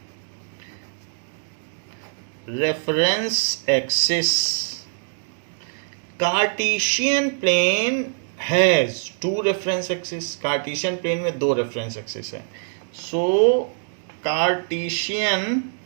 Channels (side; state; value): left; silent; digital silence